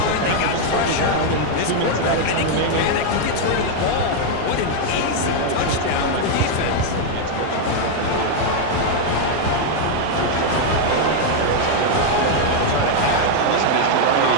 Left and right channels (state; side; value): different; both; correlation 0.00